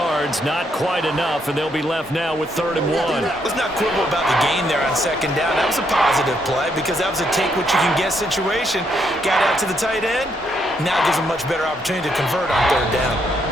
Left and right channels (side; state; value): both; normal; correlation 0.75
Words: not quite enough, and they'll be left now with 3rd and 1. Let's not quibble about the gain there on 2nd down. That was a positive play because that was a take-what-you-can-get situation. Got out to the tight end. Now gives them much better opportunity to convert on 3rd down.